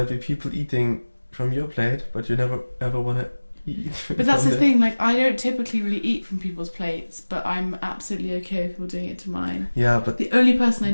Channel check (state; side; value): inverted; both; correlation -1.00